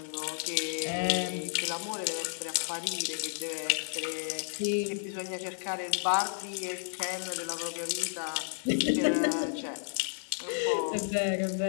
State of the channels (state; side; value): silent; right; digital silence